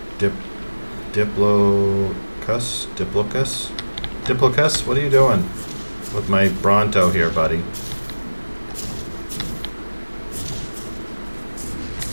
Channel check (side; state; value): both; inverted; correlation -1.00